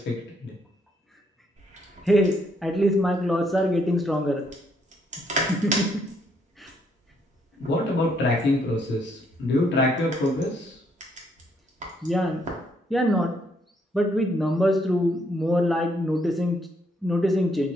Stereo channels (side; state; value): both; normal; correlation 0.72